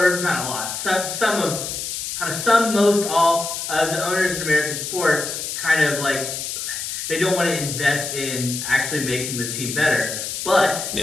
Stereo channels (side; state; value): left; noise; hiss, 5 dB below the sound